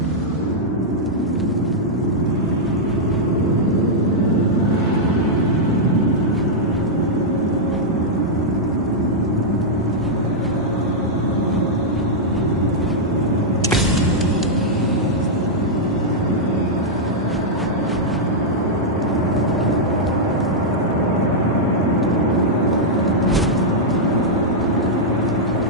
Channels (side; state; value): both; normal; correlation -0.06